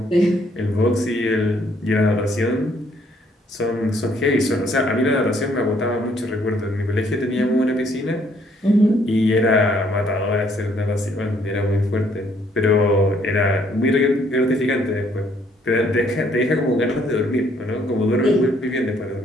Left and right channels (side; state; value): both; normal; correlation 0.66